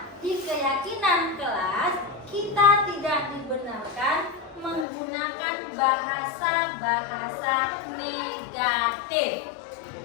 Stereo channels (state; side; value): drops out; right; at 4.9 s